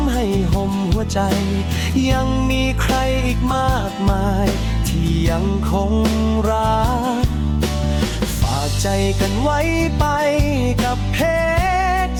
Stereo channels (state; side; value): identical; both; correlation 1.00